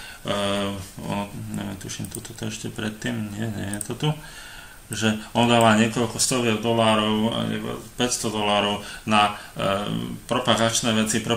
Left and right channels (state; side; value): identical; both; correlation 1.00